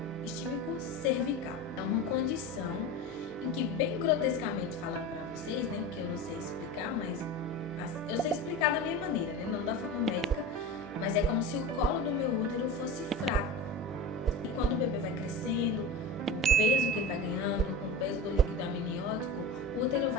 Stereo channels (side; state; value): both; normal; correlation 0.29